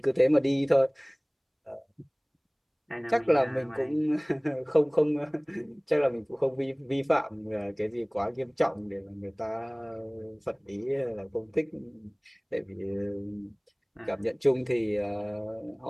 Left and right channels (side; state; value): both; identical; correlation 1.00